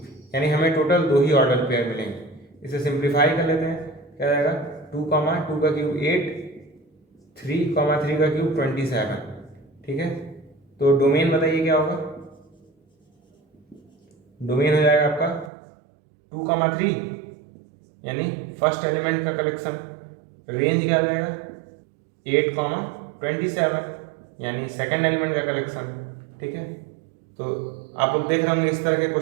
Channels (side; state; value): left; drops out; at 15.5 s